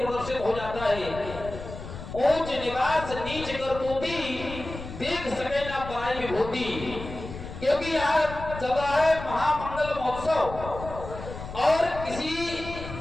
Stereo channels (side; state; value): left; noise; rumble, 11 dB below the sound